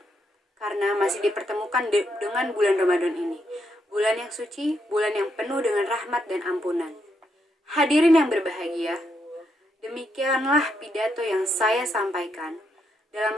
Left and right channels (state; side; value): normal; both; correlation 0.79